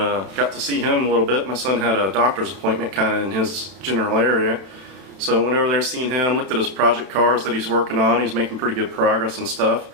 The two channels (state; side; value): late; left; 31 ms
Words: got to see him a little bit. My son had a doctor's appointment kind of in his general area. So went over there, seen him, looked at his project cars that he's working on. He's making pretty good progress and stuff.